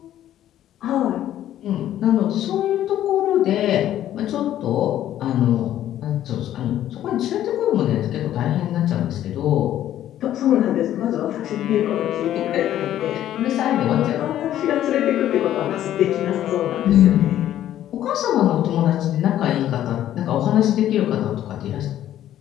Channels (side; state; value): right; quieter; 12.1 dB